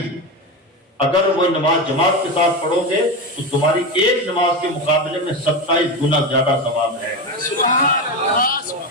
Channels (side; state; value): both; normal; correlation 0.17